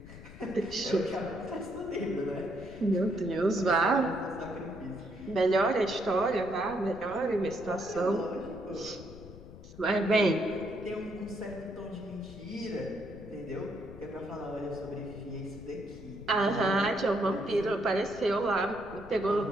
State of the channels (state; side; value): noise; left; rumble, 16 dB below the sound